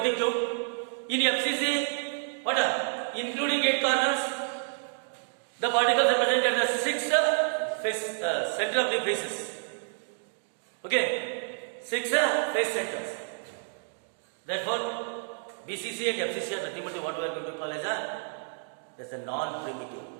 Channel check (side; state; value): left; silent; digital silence